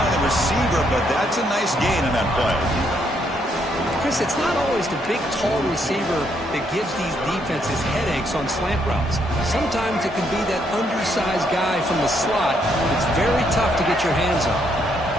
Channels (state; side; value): normal; both; correlation 0.73